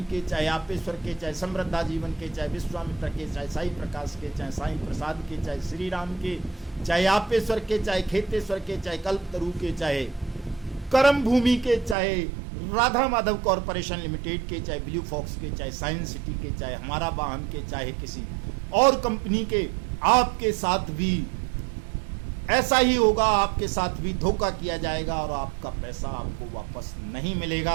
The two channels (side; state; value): left; drops out; at 12.0 s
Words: के, चाहे आपेश्वर के, चाहे समृद्धा जीवन के, चाहे विश्वामित्र के, चाहे साई प्रकाश के, चाहे साई प्रसाद के, चाहे श्री राम के, चाहे आपेश्वर के, चाहे खेतेश्वर के, चाहे कल्पतरु के, चाहे कर्म भूमि के, चाहे राधा माधव कॉरपोरेशन लिमिटेड के, चाहे ब्लू फॉक्स के, चाहे साइंस सिटी के, चाहे हमारा वाहन के, चाहे किसी और कंपनी के, आपके साथ भी ऐसा ही होगा। आपके साथ भी धोखा किया जाएगा और आपका पैसा आपको वापस नहीं